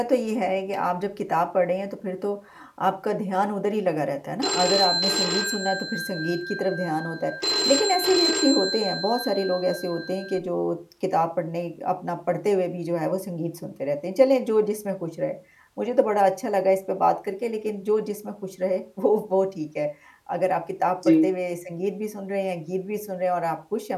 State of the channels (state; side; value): identical; both; correlation 1.00